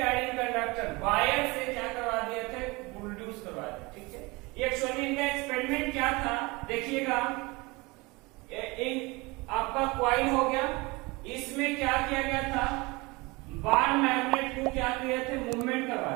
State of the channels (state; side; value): quieter; left; 24.5 dB